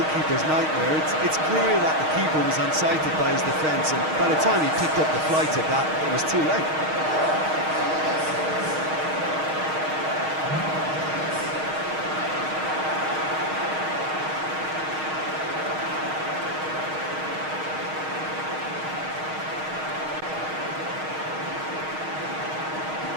nightmare. It's clear that the keeper was unsighted by his defence, and by the time he picked up the flight of that, it was too late.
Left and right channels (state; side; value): late; left; 6.4 ms